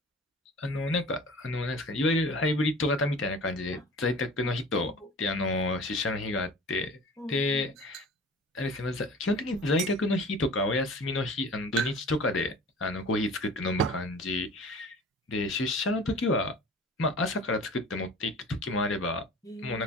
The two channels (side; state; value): both; normal; correlation 0.42